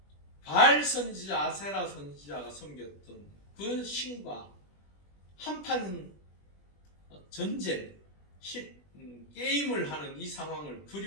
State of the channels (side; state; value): right; late; 20 ms